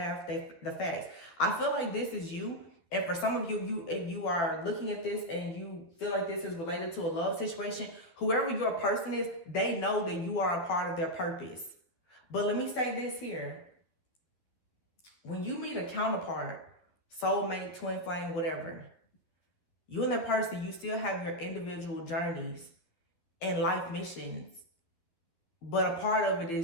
the facts. I feel like this is you. And for some of you, if you are looking at this and you feel like this is related to a love situation, whoever your person is, they know that you are a part of their purpose. But let me say this here. When you meet a counterpart, soulmate, twin flame, whatever, you and that person, you still have your individual journeys and life missions. But a part of it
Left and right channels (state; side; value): late; right; 12 ms